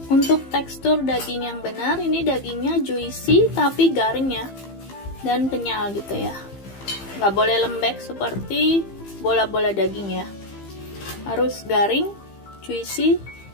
Untuk tekstur daging yang benar, ini dagingnya juicy tapi garing ya, dan kenyal gitu ya. Nggak boleh lembek seperti bola-bola daging ya, harus garing, juicy,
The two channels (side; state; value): right; late; 15 ms